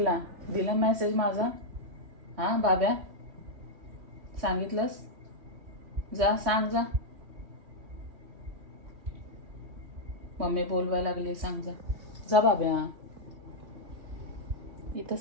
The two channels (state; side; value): late; left; 3.1 ms